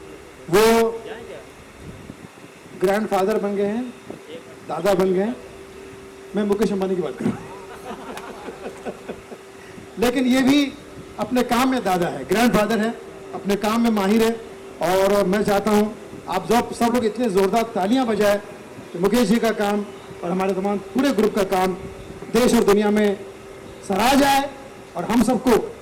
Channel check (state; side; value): identical; both; correlation 1.00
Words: वो ग्रैंडफादर बन गए हैं, दादा बन गए हैं। मैं मुकेश अंबानी की बात कर रहा हूं। लेकिन ये भी अपने काम में दादा है, ग्रैंडफादर है, अपने काम में माहिर है। और मैं चाहता हूं आप सब लोग इतने जोरदार तालियां बजाए कि मुकेश जी का काम और हमारे तमाम पूरे ग्रुप का काम देश और दुनिया में सराहा जाए और हम सबको